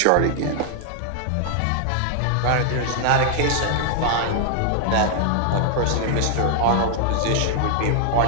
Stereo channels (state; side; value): different; both; correlation 0.00